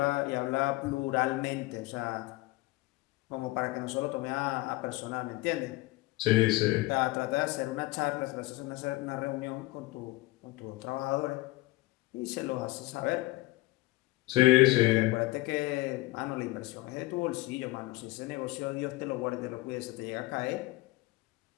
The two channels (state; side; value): quieter; right; 20.1 dB